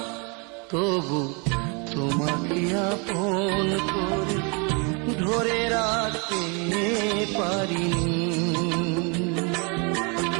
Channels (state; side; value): quieter; left; 33.0 dB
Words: তবু তোমাকে আপন করে ধরে রাখতে পারিনি।